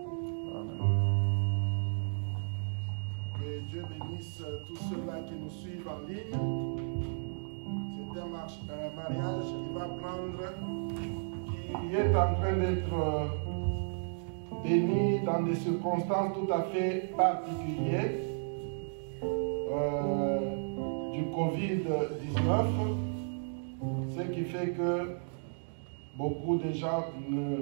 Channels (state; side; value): silent; left; digital silence